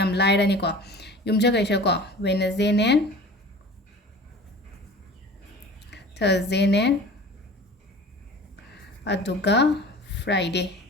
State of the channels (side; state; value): both; normal; correlation 0.41